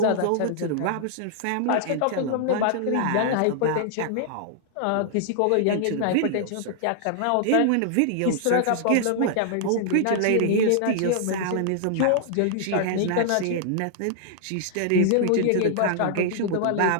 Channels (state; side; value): different; both; correlation -0.01